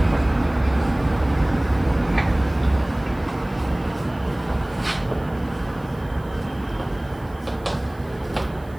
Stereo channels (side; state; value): right; noise; hiss, 28 dB below the sound